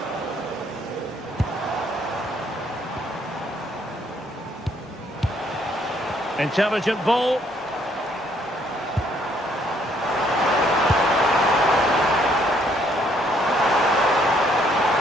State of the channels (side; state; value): both; normal; correlation 0.67